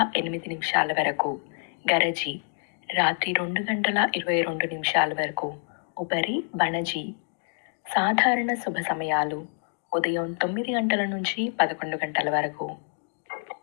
8 నిమిషాల వరకు. గరజి, రాత్రి 2 గంటల 22 నిమిషాల వరకు. ఉపరి బణజి. సాధారణ శుభ సమయాలు ఉదయం 9 గంటల నుంచి 11 గంటల వరకు.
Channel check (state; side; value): silent; right; 60 dB below the other